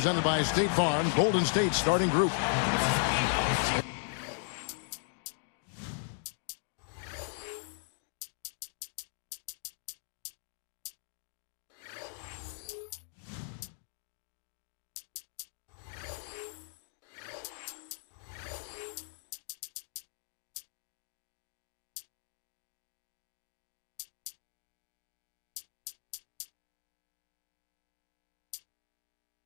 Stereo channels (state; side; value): silent; right; digital silence